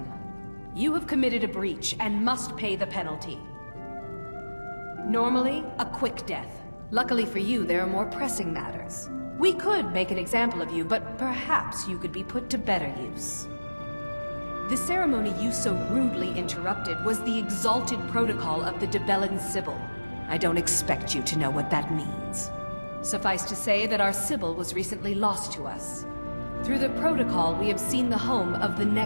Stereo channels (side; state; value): both; inverted; correlation -1.00